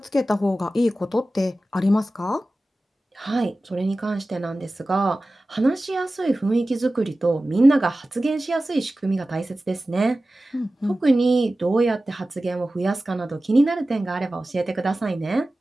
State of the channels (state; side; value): normal; both; correlation 0.96